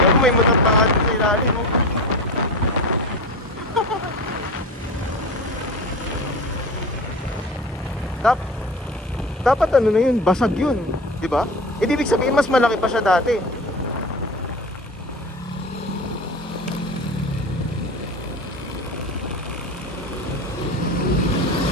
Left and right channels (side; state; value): both; normal; correlation 0.30